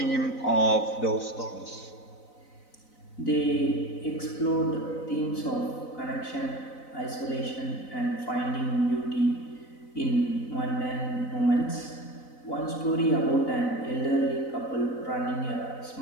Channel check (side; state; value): right; late; 4.0 ms